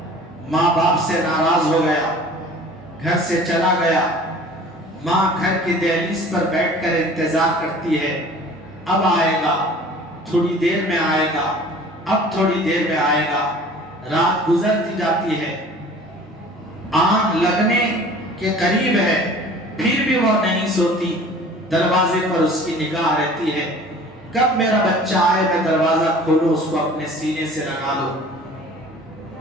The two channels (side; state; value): both; normal; correlation 0.46